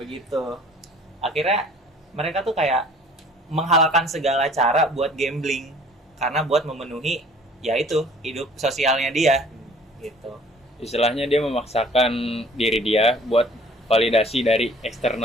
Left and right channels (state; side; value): normal; both; correlation 0.52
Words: Akhirnya mereka tuh kayak menghalalkan segala cara buat gambling karena buat memenuhi yaitu hidup sosialnya dia gitu. Istilahnya dia memaksakan diri dia buat validasi dari